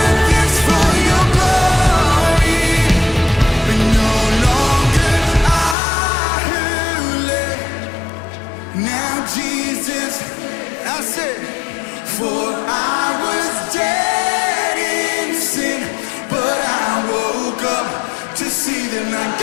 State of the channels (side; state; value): right; drops out; at 5.8 s